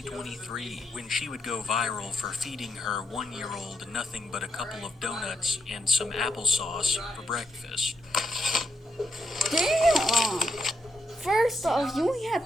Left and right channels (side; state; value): both; normal; correlation 0.81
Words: when she would go viral for feeding her 1-year-old nothing but a couple of donuts and some applesauce for breakfast. Damn! First off, you ain't have